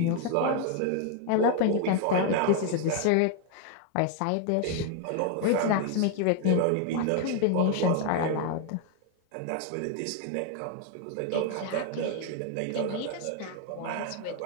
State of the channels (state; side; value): different; both; correlation 0.00